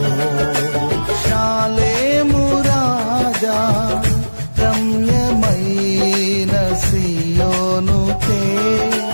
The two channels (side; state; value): both; inverted; correlation -1.00